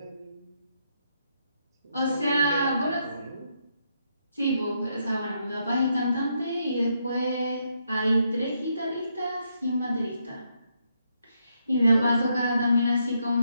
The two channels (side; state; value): both; inverted; correlation -0.78